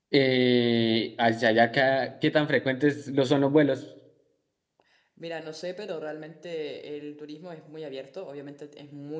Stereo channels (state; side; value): identical; both; correlation 1.00